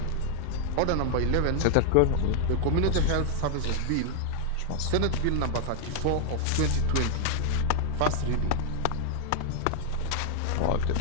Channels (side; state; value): both; different; correlation 0.00